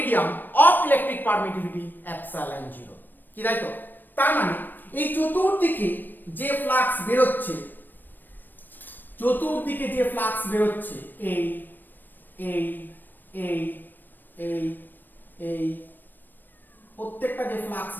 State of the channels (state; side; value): late; right; 0.091 ms